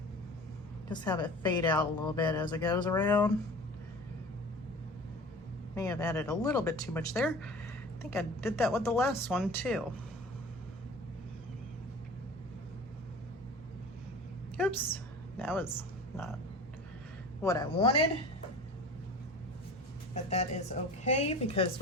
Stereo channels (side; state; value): both; normal; correlation 0.39